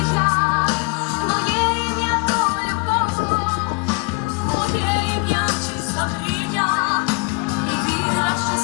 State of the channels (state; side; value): quieter; right; 32.9 dB